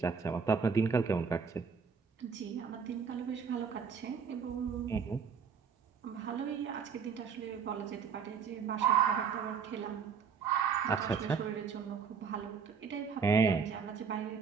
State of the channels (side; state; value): left; quieter; 6.1 dB